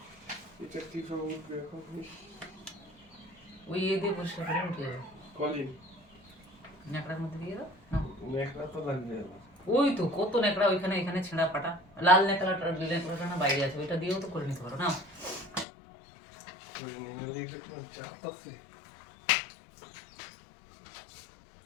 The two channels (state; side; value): drops out; right; at 15.7 s